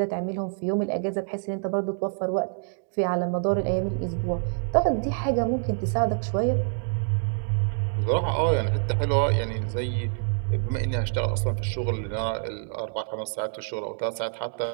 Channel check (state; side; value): silent; left; digital silence